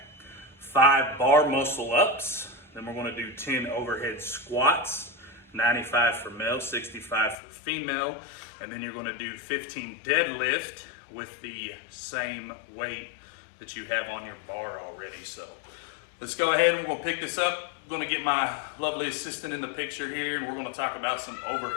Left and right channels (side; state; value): right; drops out; at 7.4 s